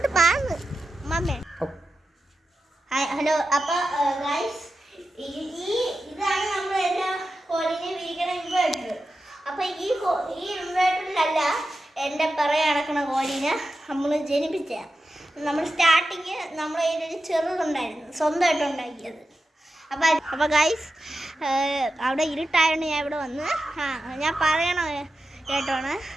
മമ്മേ. ഹലോ. അപ്പോൾ ഗൈസ് ഇതാണ് നമ്മൾ എല്ലാ കോഴീനെ വിരിക്കണ ഇൻവേർട്ടർ. അപ്പോൾ ഈ ഇൻവേർട്ടറിലല്ല എൻ്റെ പുറകെ നടക്കുന്ന കോഴീനെ നമ്മൾ ജനിപ്പിച്ച. നമ്മൾ സ്റ്റാർട്ടിങ് നമ്മുടെ കയ്യിലൊരു ചെറുതുണ്ടായിരുന്നു, സ്വന്തമായിട്ട് ഉണ്ടാക്കിയത്. അപ്പോൾ ഗൈസ് അവിടെ ഇരുട്ടായതുകൊണ്ട് ഞാൻ ഇവിടെ വന്ന് ഞാൻ പറയണ കേട്ടോണ്.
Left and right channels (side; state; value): both; normal; correlation 0.91